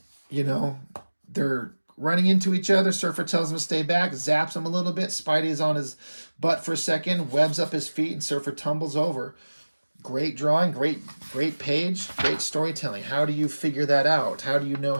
you know, they're running into each other. Surfer tells him to stay back, zaps him a little bit. Spidey is on his butt for a second, webs up his feet, and Surfer tumbles over. Great drawing, great page, great storytelling. How do you figure that out? How do you know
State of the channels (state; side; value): inverted; both; correlation -1.00